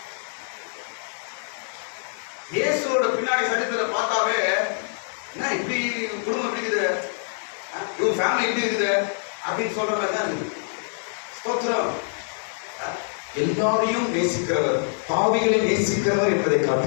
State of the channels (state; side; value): silent; right; 61 dB below the other